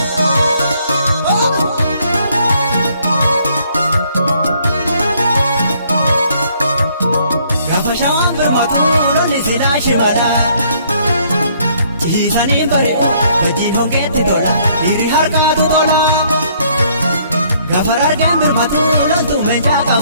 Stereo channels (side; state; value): both; inverted; correlation -0.65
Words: Shimala Jisani bari'u gatiin hongeetti tola Hiri harkaatu tola Gafar argeen birmatu loltuu meeshaa